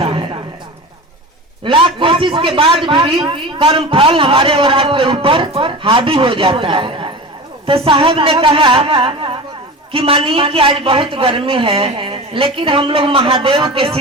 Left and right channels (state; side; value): normal; both; correlation 0.31